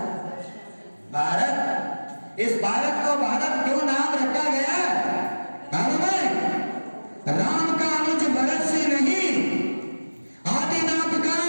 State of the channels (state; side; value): inverted; both; correlation -1.00